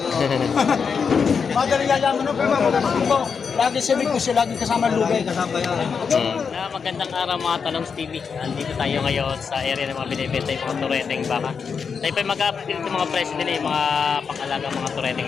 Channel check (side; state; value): right; quieter; 6.0 dB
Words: Madali yayaman no, pero tubo. Lagi sabi ko siya, lagi kasama lugay. Kasama yan. Na magandang araw mga Talongs TV. Andito tayo ngayon sa area ng mga binibenta yung mga tureteng baka. Tayo pa mag-update dito mga presyo din yung mga pangalagang mga